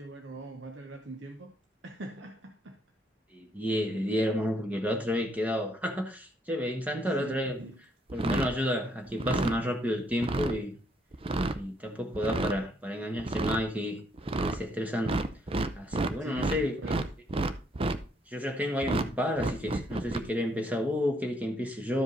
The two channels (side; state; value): both; normal; correlation 0.70